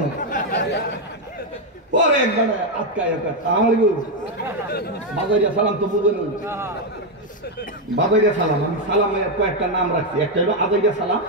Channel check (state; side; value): normal; both; correlation 0.03